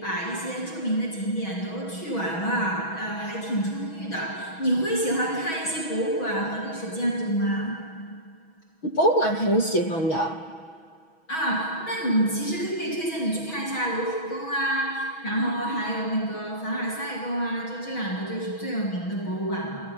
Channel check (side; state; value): right; late; 6.2 ms